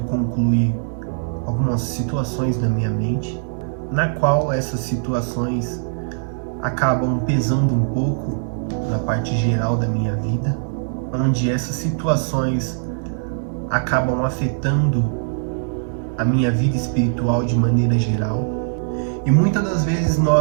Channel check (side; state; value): left; silent; 65 dB below the other